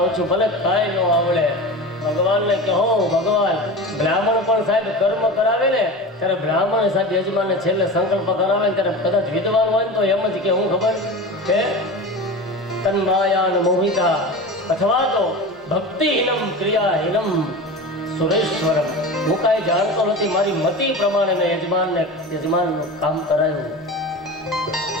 છું, ભલે કાંઈ ન આવડે. ભગવાનને કહો, ભગવાન બ્રાહ્મણ પણ સાહેબ કર્મ કરાવે ને ત્યારે બ્રાહ્મણ સાહેબ યજમાનને છેલ્લે સંકલ્પ કરાવે ને ત્યારે કદાચ વિદ્વાન હોય ને તો એમ જ કે હું ખબર કે તન્માયાન મોહિતા અથવા તો ભક્તિહીનમ ક્રિયાહીનમ સુરેશ્વરમ. હું કાંઈ જાણતો નથી, મારી મતિ પ્રમાણે મેં યજમાનનું કામ કરાયું,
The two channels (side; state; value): both; normal; correlation 0.30